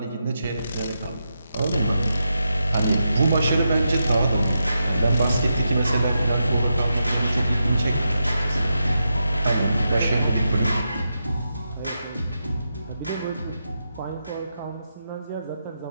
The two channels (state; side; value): inverted; both; correlation -0.86